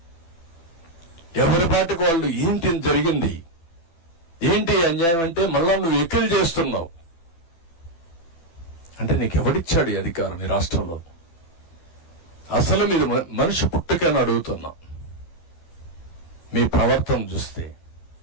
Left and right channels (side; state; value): right; late; 12 ms